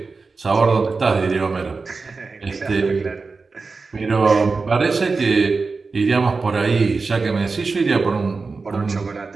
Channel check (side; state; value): left; quieter; 4.2 dB